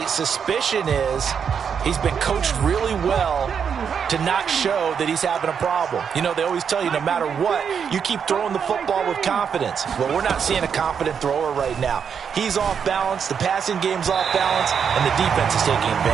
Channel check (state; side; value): quieter; left; 7.1 dB